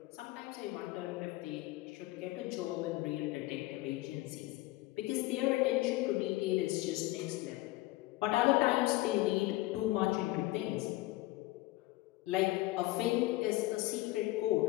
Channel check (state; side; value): quieter; right; 18.7 dB